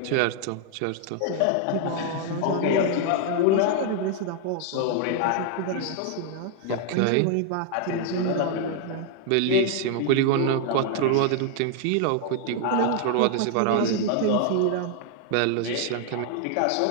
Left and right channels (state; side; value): different; both; correlation 0.00